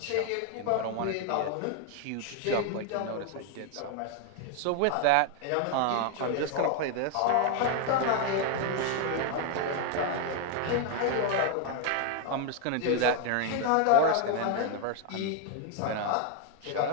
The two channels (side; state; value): both; different; correlation 0.01